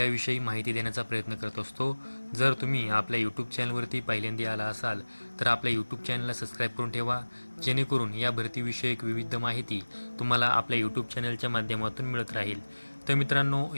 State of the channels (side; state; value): both; inverted; correlation -1.00